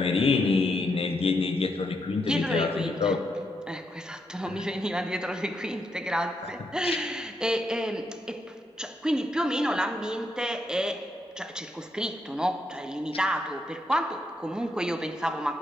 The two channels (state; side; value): normal; both; correlation 0.80